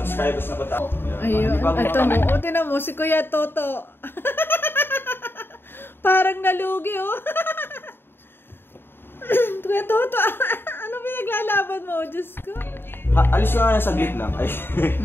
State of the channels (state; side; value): late; right; 0.11 ms